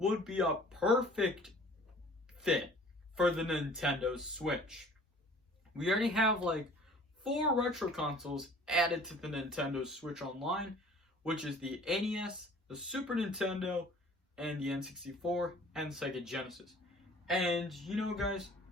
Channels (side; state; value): both; normal; correlation 0.50